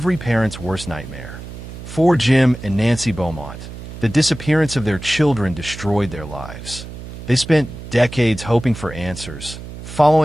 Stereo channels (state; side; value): noise; right; hum, 12 dB below the sound